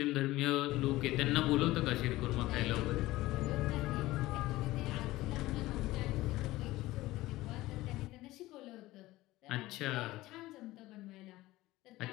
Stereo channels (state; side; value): quieter; right; 17.8 dB